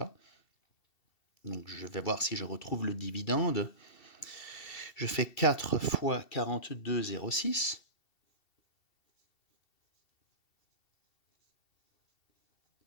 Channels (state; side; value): late; right; 2.7 ms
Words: Donc je vais voir si je retrouve le dividende. Je fais 4 fois 42,06.